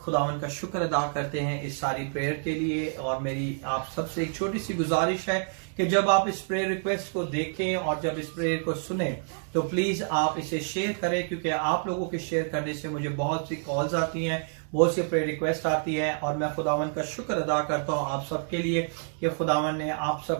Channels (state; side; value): silent; left; digital silence